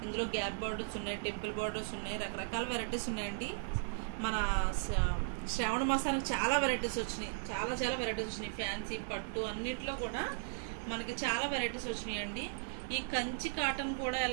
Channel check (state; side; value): silent; left; digital silence